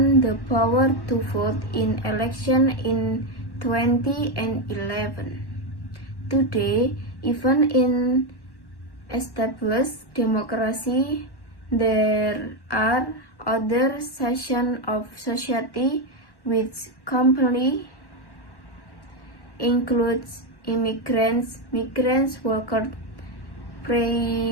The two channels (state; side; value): late; right; 1.1 ms